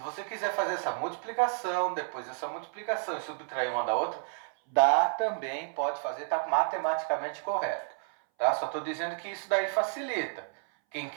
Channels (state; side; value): silent; left; 57 dB below the other